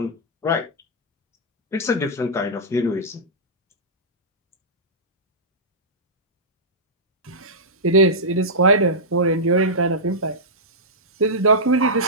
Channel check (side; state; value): both; normal; correlation -0.13